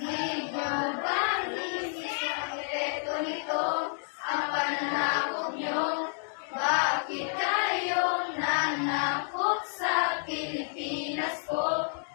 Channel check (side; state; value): right; silent; 58 dB below the other